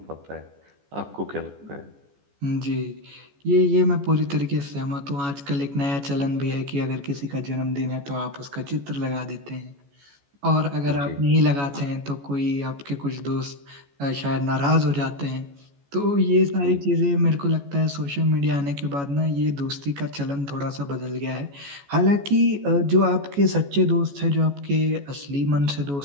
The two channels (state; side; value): late; left; 14 ms